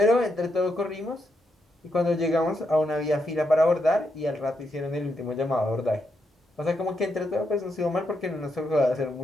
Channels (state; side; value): normal; both; correlation 0.81